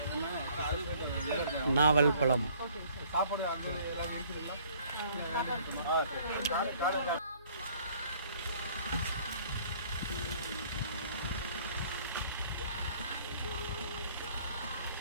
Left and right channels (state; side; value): inverted; both; correlation -0.58